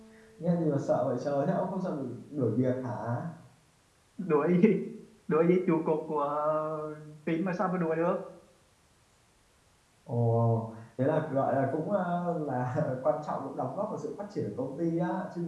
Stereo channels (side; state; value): both; identical; correlation 1.00